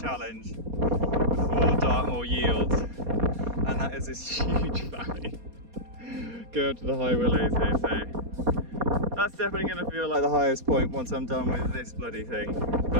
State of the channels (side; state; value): left; late; 4.2 ms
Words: before Dartmoor yields, and that is this huge valley. Go up to the High Willows here, so that's definitely going to feel like the highest point once I'm done with this bloody thing.